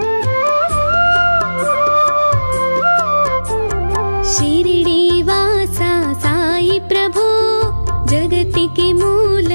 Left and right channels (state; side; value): inverted; both; correlation -1.00